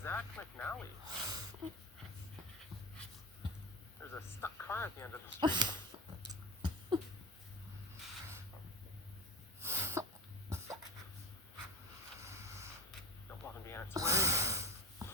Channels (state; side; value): normal; both; correlation 0.29